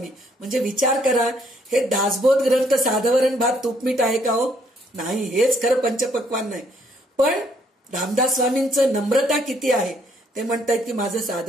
म्हणजे विचार करा, हे दासबोध ग्रंथ साधवरण भात तूपमीठ आहे का हो? नाही, हेच खरं पंचपक्वान्न आहे. पण रामदास स्वामींचं नम्रता किती आहे. ते म्हणतायत की माझं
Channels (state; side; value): normal; both; correlation 0.67